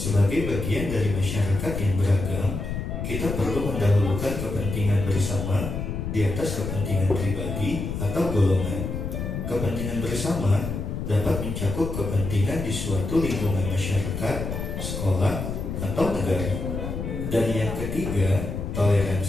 bagian dari masyarakat yang beragam, kita perlu mendahulukan kepentingan bersama di atas kepentingan pribadi atau golongan. Kepentingan bersama dapat mencakup kepentingan di suatu lingkungan masyarakat, sekolah, atau negara. Dan yang ketiga,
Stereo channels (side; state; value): left; noise; rumble, 4 dB below the sound